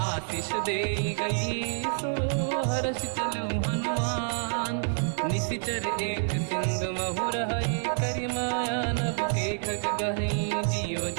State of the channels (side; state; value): left; silent; 59 dB below the other